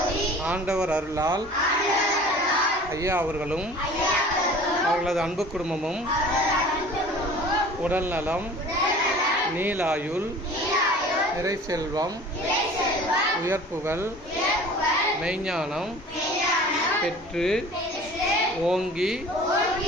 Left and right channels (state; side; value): normal; both; correlation 0.44